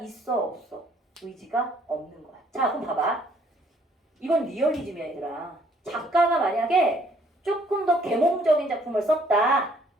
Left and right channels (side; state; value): both; normal; correlation 0.64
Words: 없어? 의지가 없는 거야. 자, 그럼 봐봐. 이건 리얼리즘이야 얘들아. 작가가 만약에 조금 더 계몽적인 작품을 썼다.